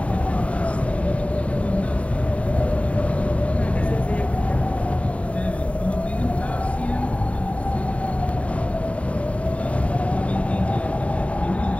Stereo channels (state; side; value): late; right; 0.065 ms